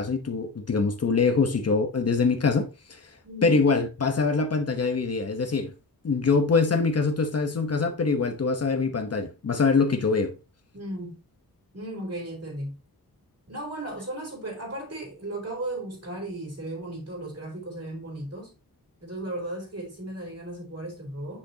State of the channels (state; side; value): quieter; right; 3.7 dB